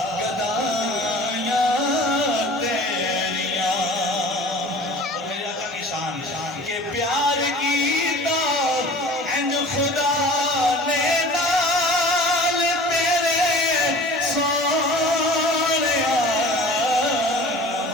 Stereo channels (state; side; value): normal; both; correlation 0.43